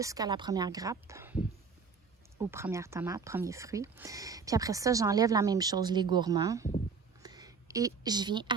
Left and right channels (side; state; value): left; quieter; 5.5 dB